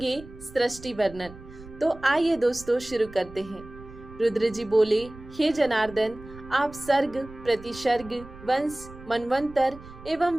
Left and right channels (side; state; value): right; noise; rumble, 17 dB below the sound